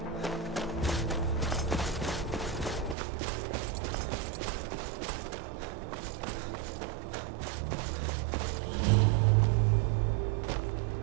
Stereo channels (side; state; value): left; drops out; at 3.0 s